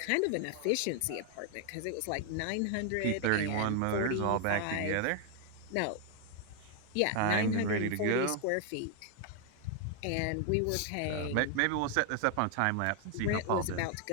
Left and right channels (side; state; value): both; different; correlation 0.00